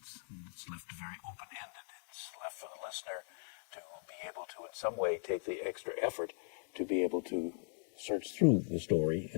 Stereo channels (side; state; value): right; silent; digital silence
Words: It's left very open-ended. It's left for the listener to be able to in some way take the extra effort to be able to search through the story